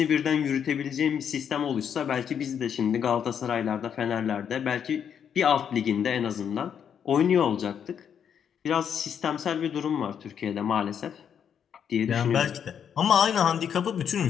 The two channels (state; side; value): quieter; right; 8.1 dB